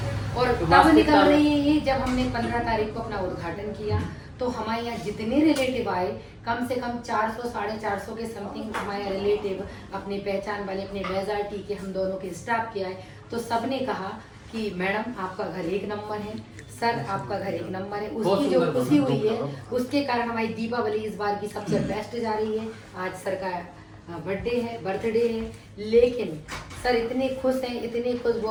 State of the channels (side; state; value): both; identical; correlation 1.00